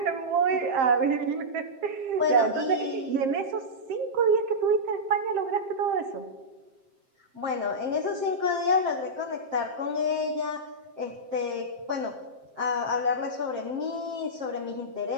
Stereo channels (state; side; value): late; left; 7.6 ms